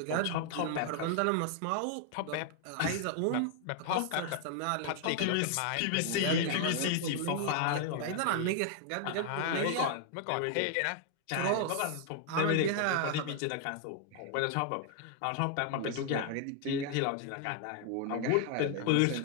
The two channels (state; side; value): different; both; correlation 0.00